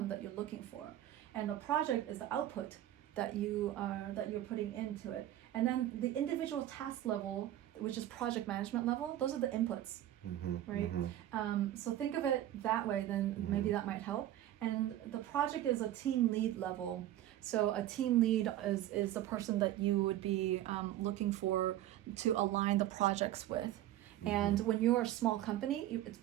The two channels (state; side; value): quieter; left; 13.2 dB